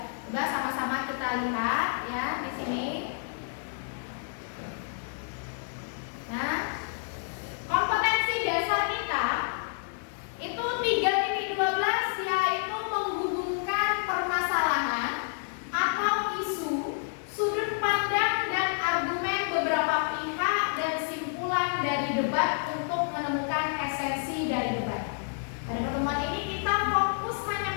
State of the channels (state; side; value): silent; right; digital silence